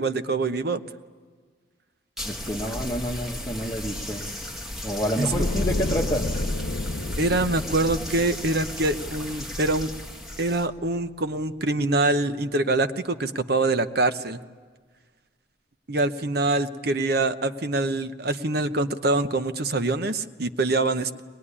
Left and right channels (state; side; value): normal; both; correlation 0.26